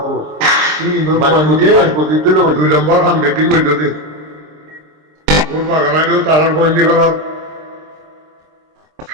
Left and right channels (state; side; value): late; left; 26 ms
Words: 2 নম্বর খান বেটিং করতে দে ওর বাগানাইলেও তারার বন্দি করার